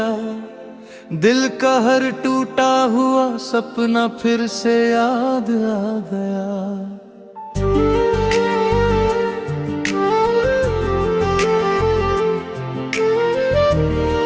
दिल का हर टूटा हुआ सपना फिर से याद आ गया।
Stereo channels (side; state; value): both; identical; correlation 1.00